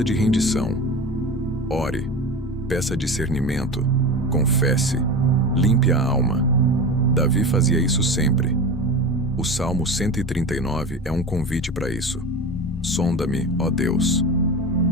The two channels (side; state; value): both; normal; correlation 0.28